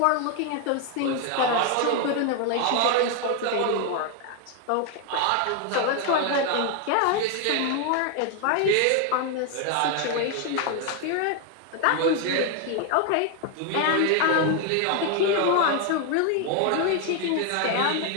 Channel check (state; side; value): different; both; correlation 0.01